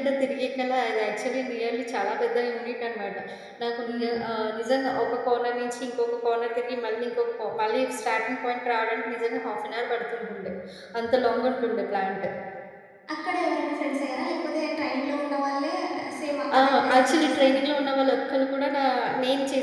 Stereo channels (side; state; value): both; identical; correlation 1.00